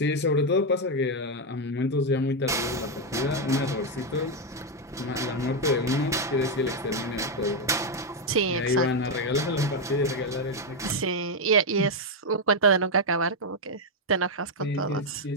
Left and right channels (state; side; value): normal; both; correlation 0.02